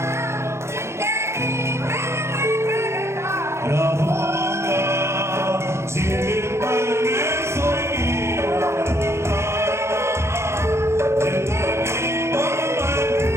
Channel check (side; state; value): left; late; 0.13 ms